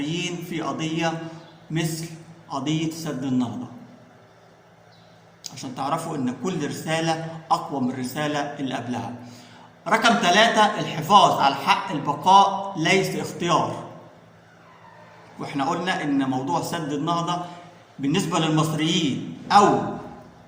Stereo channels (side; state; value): both; identical; correlation 1.00